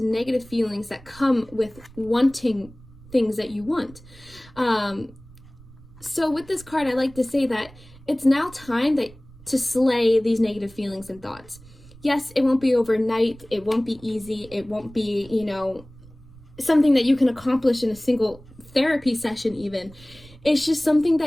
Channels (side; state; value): right; noise; rumble, 22 dB below the sound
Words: negative feelings that come with wanting things that you want. So with this card, I like to say that it's now time to slay these negative feelings and thoughts. Yes, it won't be overnight. It won't be easy. It won't be, something that you can accomplish in a single therapy session even. It's just something